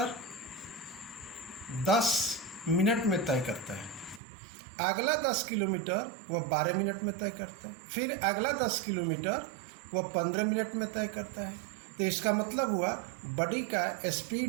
10 मिनट में तय करता है, अगला 10 किलोमीटर वह 12 मिनट में तय करता है, फिर अगला 10 किलोमीटर वह 15 मिनट में तय करता है। तो इसका मतलब हुआ बॉडी का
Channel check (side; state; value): left; drops out; at 4.2 s